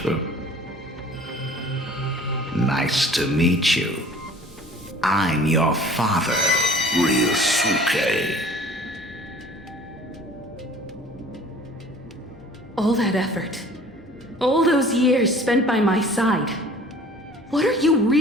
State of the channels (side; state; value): both; normal; correlation 0.48